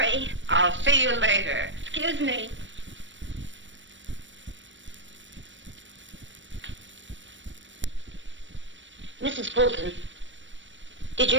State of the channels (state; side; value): late; left; 0.54 ms